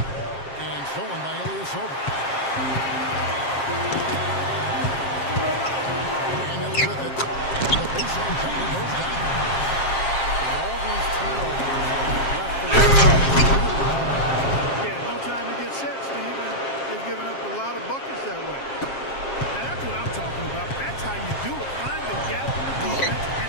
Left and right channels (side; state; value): right; late; 7.5 ms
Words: And stolen by Ilyasova. Daniels with it. The baseline jumper goes down. All these turnovers left the Yeah, no time to get set, Steve. And they've given up a lot of buckets that way. Now, that's what I'm talking about. That's how you do it. Find the gap in the defense and